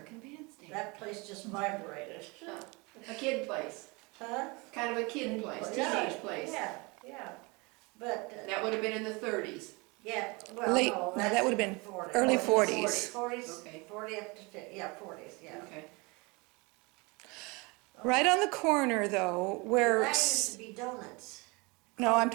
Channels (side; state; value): left; quieter; 27.2 dB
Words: Bandstand. that place just vibrated. A kid place, Huh? kind of a kid place, Yeah, teenage place. Yeah, yeah. But, That would have been in the 30s. yeah, well, Late- no, no, that's that would've in been the 40s. early 40s. 40s. Okay. 40 up to 50, yeah, 40s, yeah. Okay. Right on the corner though, where, That used to be donuts. no, I'm